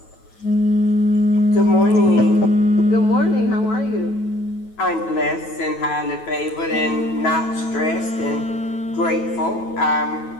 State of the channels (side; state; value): right; late; 9.2 ms